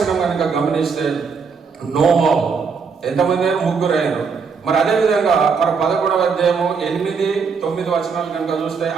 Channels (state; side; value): quieter; left; 5.6 dB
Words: కనుక గమనిస్తే నోవా. ఎంతమంది అయినా? 3 అయినారు. మరి అదేవిధంగా మరి 11వ అధ్యాయము 8-9 వచనాలు కనుక చూస్తే